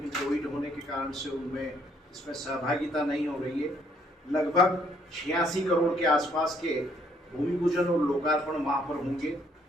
कोविड होने के कारण से उनमें इसमें सहभागिता नहीं हो रही है। लगभग 86 करोड़ के आसपास के भूमि पूजन और लोकार्पण वहाँ पर होंगे।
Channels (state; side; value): normal; both; correlation 0.67